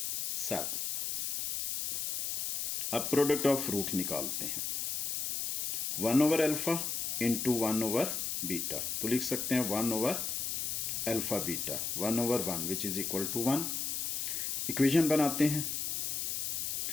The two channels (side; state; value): left; noise; hiss, 1 dB below the sound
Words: अब प्रोडक्ट ऑफ रूट निकालते हैं, 1/अल्फा इंटू 1/बीटा। तो लिख सकते हैं 1/अल्फा beta 1/1 which is equal to 1। Equation बनाते हैं,